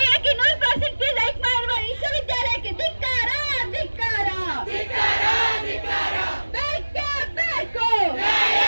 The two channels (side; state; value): both; inverted; correlation -1.00